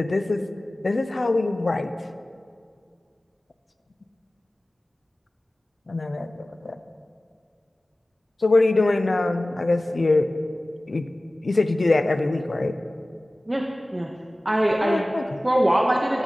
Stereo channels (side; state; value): both; normal; correlation 0.97